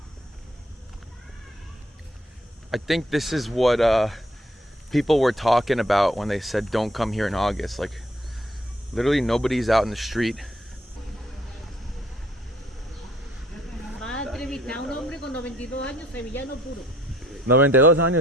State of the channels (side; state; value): both; normal; correlation 0.64